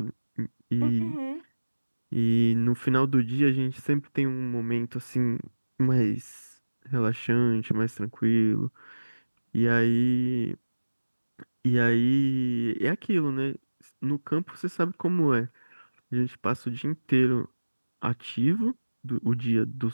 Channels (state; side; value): inverted; both; correlation -1.00